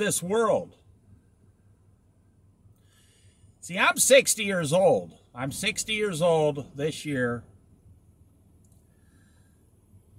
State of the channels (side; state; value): both; identical; correlation 1.00